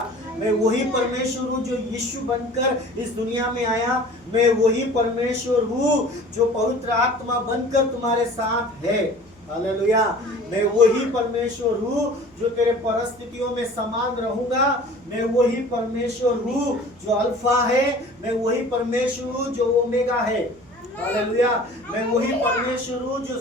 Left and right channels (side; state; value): right; noise; hum, 30 dB below the sound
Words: मैं वही परमेश्वर हूँ जो यीशु बनकर इस दुनिया में आया, मैं वही परमेश्वर हूँ जो पवित्र आत्मा बनकर तुम्हारे साथ है। हालेलुया। मैं वही परमेश्वर हूँ जो तेरे परिस्थितियों में समान रहूंगा, मैं वही परमेश्वर हूँ जो अल्फा है, मैं वही परमेश्वर हूँ जो ओमेगा है। हालेलुया। मैं वही परमेश्वर हूँ जो